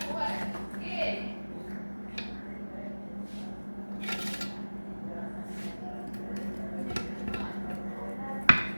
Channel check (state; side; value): inverted; both; correlation -1.00